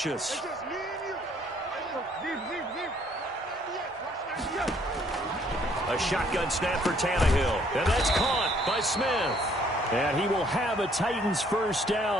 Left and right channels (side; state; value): both; normal; correlation 0.63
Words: A shotgun snap for Tannehill. And that's caught by Smith. And he will have a Titans first